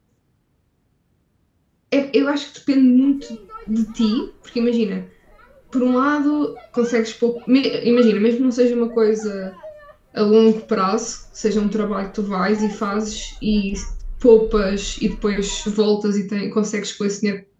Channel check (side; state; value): both; identical; correlation 1.00